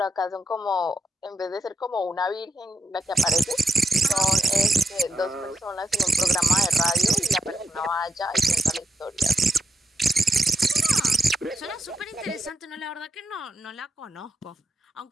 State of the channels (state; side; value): normal; both; correlation 0.85